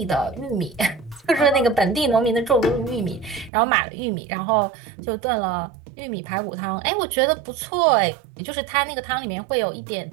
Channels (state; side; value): drops out; left; at 3.5 s